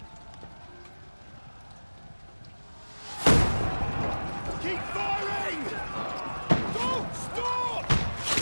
Keep firing! Don't stop!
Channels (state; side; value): inverted; both; correlation -1.00